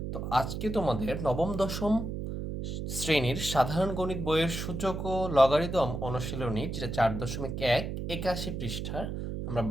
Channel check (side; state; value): right; noise; hum, 5 dB below the sound